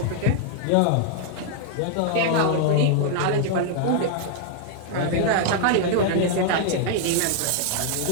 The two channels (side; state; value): both; different; correlation 0.00